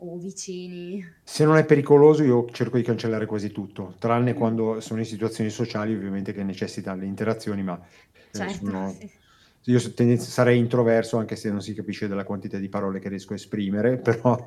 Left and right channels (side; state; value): both; identical; correlation 1.00